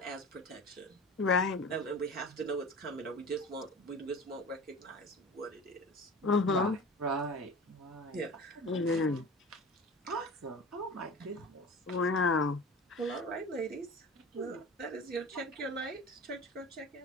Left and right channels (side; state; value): both; normal; correlation 0.35